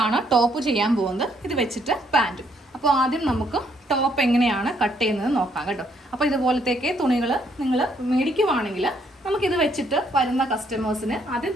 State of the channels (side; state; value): both; normal; correlation 0.70